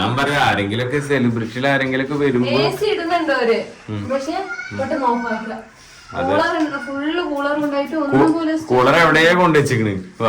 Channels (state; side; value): identical; both; correlation 1.00